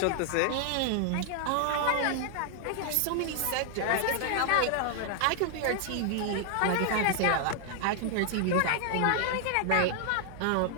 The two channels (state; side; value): different; both; correlation 0.00